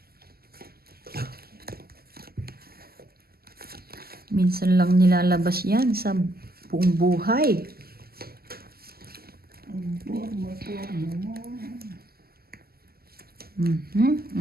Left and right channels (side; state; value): left; late; 0.45 ms